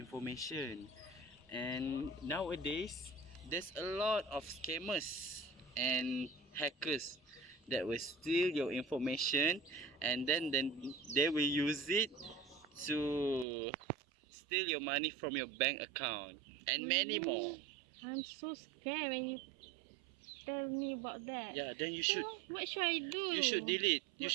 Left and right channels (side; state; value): left; drops out; at 13.5 s